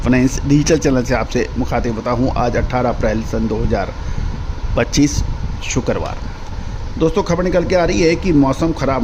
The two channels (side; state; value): both; identical; correlation 1.00